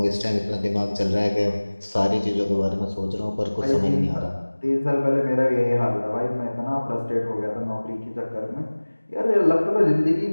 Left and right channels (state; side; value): inverted; both; correlation -1.00